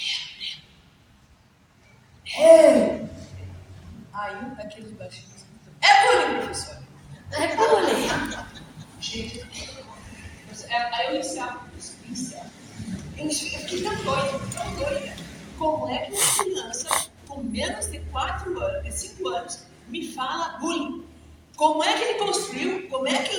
Aí um daqueles baixinhos. É bullying, professor. É bullying. Gente, aí eu encerro. Eu fiquei tão doida. Como é que uma criança com menos de 5 anos me fala bullying? Como é que ele construiu? Como é que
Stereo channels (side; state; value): both; identical; correlation 1.00